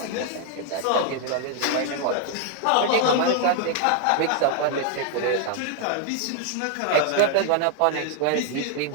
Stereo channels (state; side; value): different; both; correlation 0.00